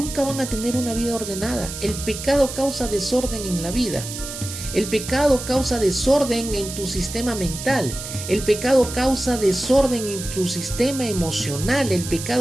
van a tener una vida ordenada. El pecado causa desorden en la vida. El pecado causa desorden en tu sistema mental. El pecado causa desorden en tu sistema emocional. El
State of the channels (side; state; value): right; noise; hiss, 9 dB below the sound